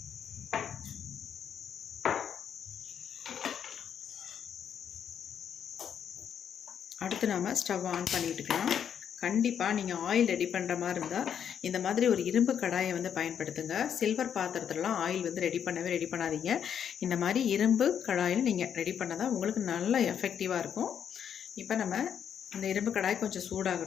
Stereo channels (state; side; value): quieter; right; 8.4 dB